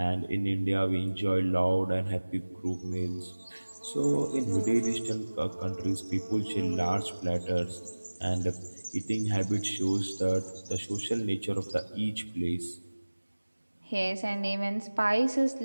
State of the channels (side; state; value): both; inverted; correlation -1.00